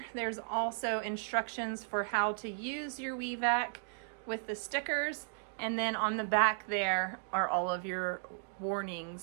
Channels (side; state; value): left; silent; digital silence